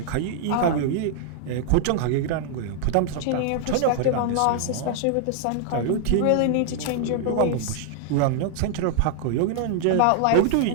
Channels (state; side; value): different; both; correlation -0.01